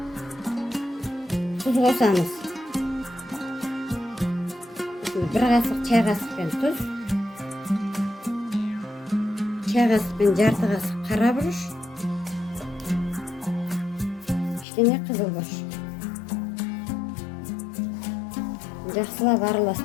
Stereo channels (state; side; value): drops out; right; at 14.7 s